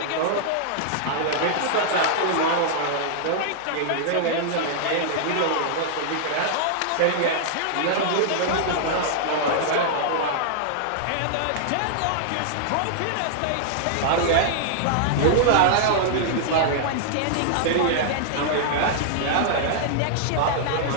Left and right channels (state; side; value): different; both; correlation -0.01